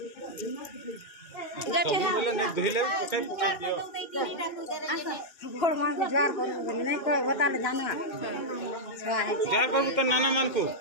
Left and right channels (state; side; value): late; right; 2.1 ms